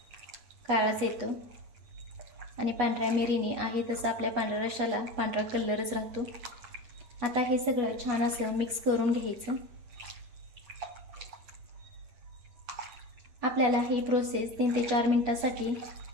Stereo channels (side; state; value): left; late; 8.2 ms